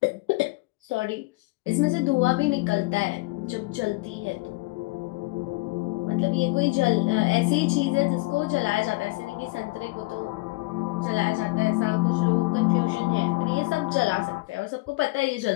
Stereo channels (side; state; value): right; quieter; 23.1 dB